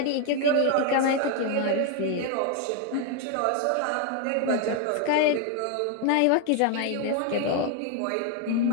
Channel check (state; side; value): different; both; correlation 0.01